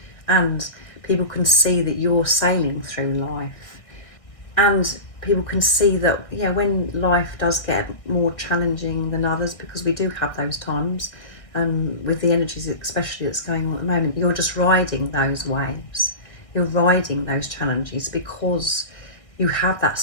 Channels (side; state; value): right; late; 1.5 ms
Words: And people can see that you're sailing through life. And people can see that, yeah, when life does get more challenging than others, because we do have those times, with the energies especially that's going on at the moment, you're just riding those waves. You're riding those challenges because you have that